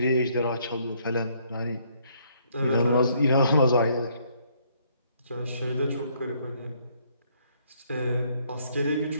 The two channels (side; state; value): both; inverted; correlation -0.67